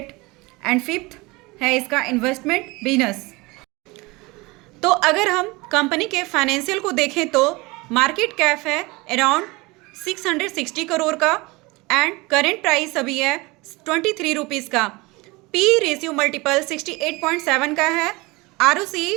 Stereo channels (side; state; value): left; quieter; 23.8 dB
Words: and fifth है इसका investment business. तो अगर हम company के फाइनेंशियल को देखें तो मार्केट कैप है अराउंड 660 करोड़ का एंड करेंट प्राइस अभी है 23 रुपीज़ का। P रेशियो मल्टीपल 68.7 का है। ROC